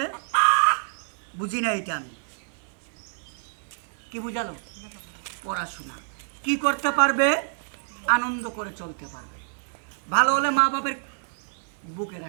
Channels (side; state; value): left; silent; 60 dB below the other